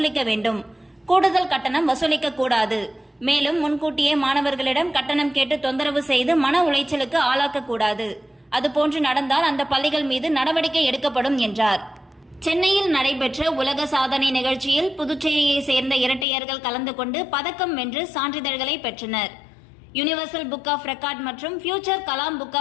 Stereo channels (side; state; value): right; drops out; at 16.2 s